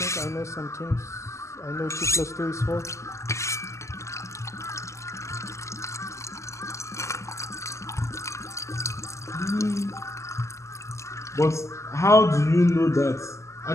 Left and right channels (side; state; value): right; late; 0.14 ms